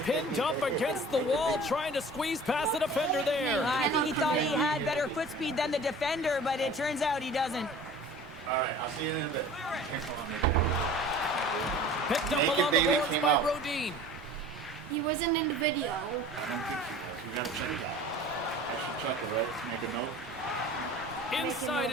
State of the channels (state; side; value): normal; both; correlation 0.43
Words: pinned up against the wall trying to squeeze past the defender there. I think he thought he had better foot speed than the defender, but it turns out he doesn't. All right, I'll see you in a bit. Picked up Naked along the baby boards came by out. Rodin. He wasn't in the video. I don't think he was. We gotta check it out. I should check it, right? Make a note. Inside